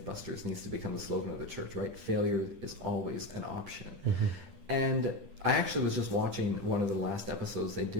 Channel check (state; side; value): late; left; 10 ms